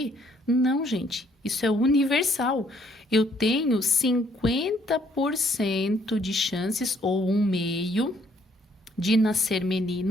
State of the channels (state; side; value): normal; both; correlation 0.66